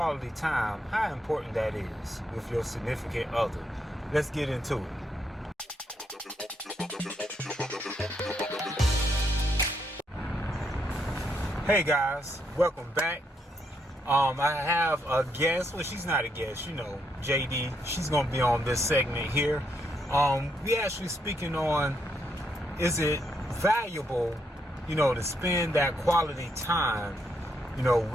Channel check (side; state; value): both; normal; correlation 0.77